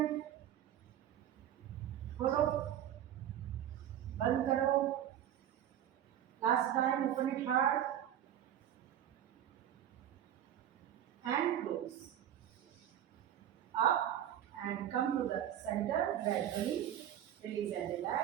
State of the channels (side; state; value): left; quieter; 10.9 dB